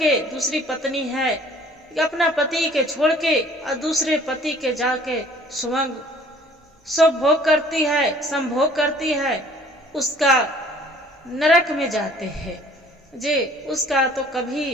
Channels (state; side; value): normal; both; correlation 0.54